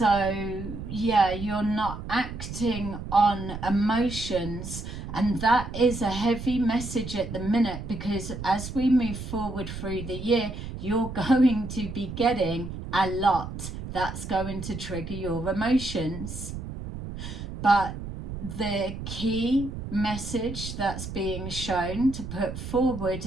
yeah, you're not acting on emotions, and that is a heavy message at the minute, because as we move forward through the year, you're going to be getting a lot that's going to trigger your emotions. But the key message that's being shown to put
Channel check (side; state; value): right; noise; rumble, 8 dB below the sound